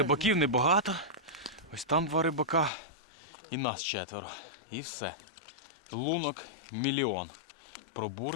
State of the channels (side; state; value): right; drops out; at 2.7 s